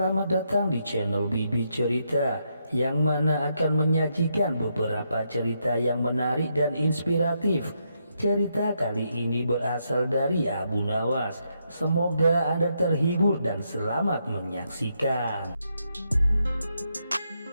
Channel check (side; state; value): both; inverted; correlation -0.80